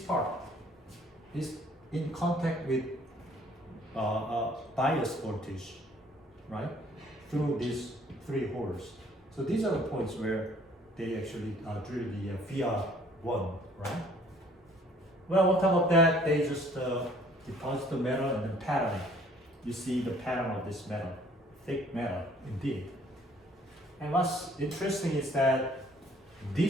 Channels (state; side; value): normal; both; correlation 0.58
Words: is in contact with bias voltage, right? Through these 3 holes. So these are the points where they actually drill the VR1, right? Well, on top of that, they just deposit the metal and then pattern it. You see the pattern of this metal, thick metal, indeed. And what's interesting is that